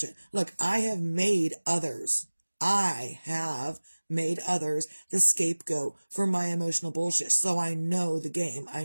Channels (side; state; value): both; inverted; correlation -1.00